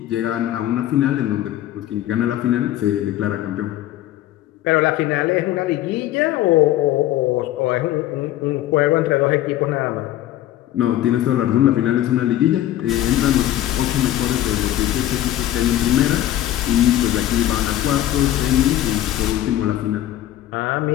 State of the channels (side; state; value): right; quieter; 13.3 dB